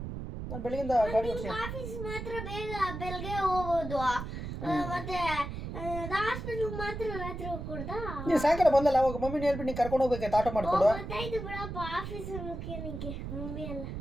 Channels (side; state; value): right; noise; rumble, 7 dB below the sound